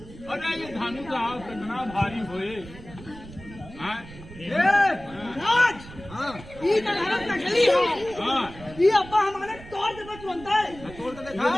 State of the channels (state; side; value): noise; right; rumble, 17 dB below the sound